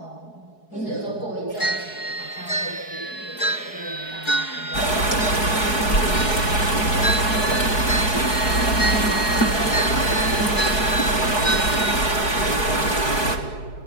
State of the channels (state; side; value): late; right; 4.7 ms